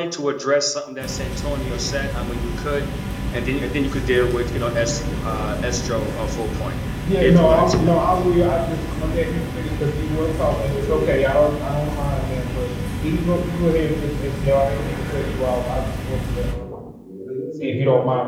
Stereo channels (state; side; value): identical; both; correlation 1.00